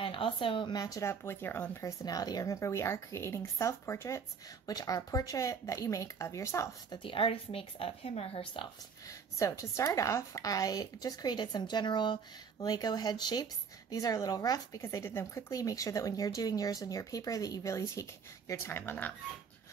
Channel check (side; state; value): left; quieter; 6.1 dB